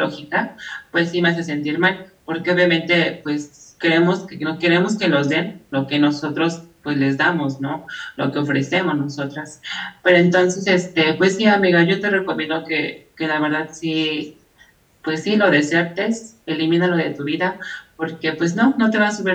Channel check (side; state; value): both; identical; correlation 1.00